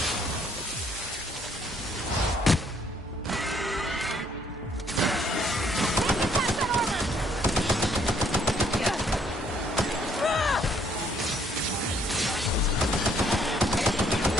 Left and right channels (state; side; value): normal; both; correlation 0.66